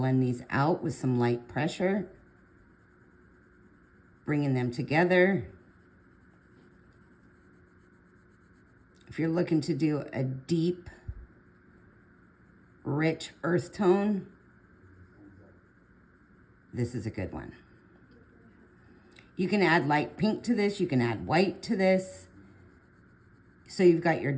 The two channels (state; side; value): identical; both; correlation 1.00